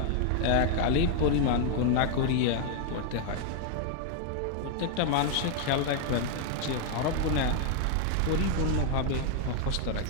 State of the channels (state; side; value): different; both; correlation 0.00